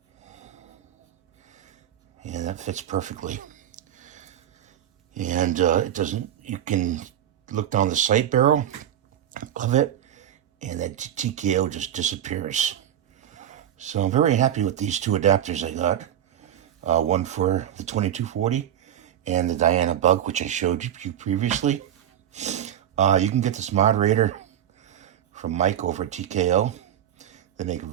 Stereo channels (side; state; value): left; quieter; 10.6 dB